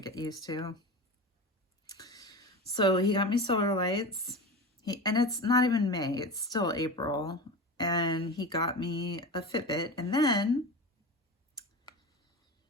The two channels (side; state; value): both; normal; correlation 0.27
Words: used to. So he got me solar lights. And it's not even May, it's still April. And he got me a Fitbit. And then